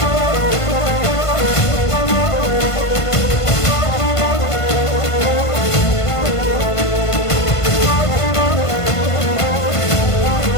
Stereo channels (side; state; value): right; late; 1.5 ms